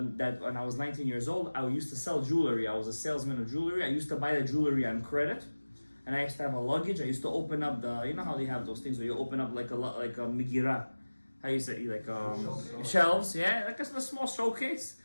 when I was 19 years old, I used to sell jewelry. I was a salesman of jewelry. I used to buy the jewelry on credit. And I used to have a luggage. I used to open up the, you know how they have those things where you open up like a megirah, how you say, like shelves, yeah, like a small showcase.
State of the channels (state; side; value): inverted; both; correlation -1.00